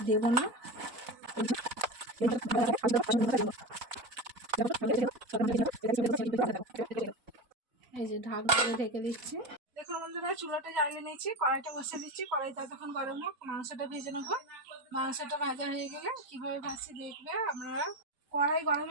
দেব না। এই যে ঢাকনা দিয়ে ঢেকে দিচ্ছি। দেখুন বন্ধুরা, চুলাটা জ্বালিয়ে নিয়েছি, কড়াইটা বসিয়ে দিচ্ছি। কড়াইটা তখন গরম হোক, মাংসটা ভেজে নেবো। মাংসটা ভাজা হয়ে গেলে কীভাবে ভাজছি দেখবে আপনারা। কড়াই গরম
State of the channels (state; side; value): late; left; 4.1 ms